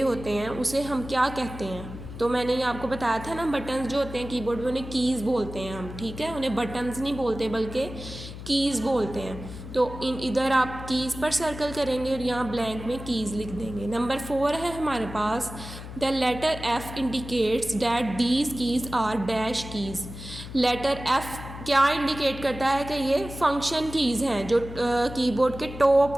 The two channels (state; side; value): noise; left; hum, 12 dB below the sound